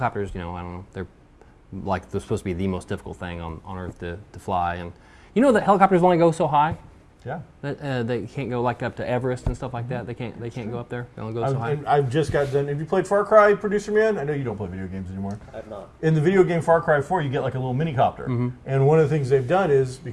I don't know. They're supposed to be the most difficult thing on Earth to fly, and that helicopters only go so high. Yeah. They can't go up to Everest and stuff like that. They can't go up there. They only go so high. And I've just got done. Have you played Far Cry, Producer Man? I know you don't play video games anymore. I have not. In the video game Far Cry 4, you get like a little mini copter. And one of the things they've done is,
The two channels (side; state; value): both; identical; correlation 1.00